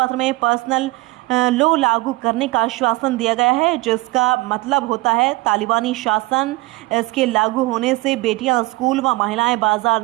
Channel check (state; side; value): quieter; left; 21.7 dB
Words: में पर्सनल लॉ लागू करने का आश्वासन दिया गया है, जिसका मतलब होता है तालिबानी शासन। इसके लागू होने से बेटियां स्कूल व महिलाएं बाजार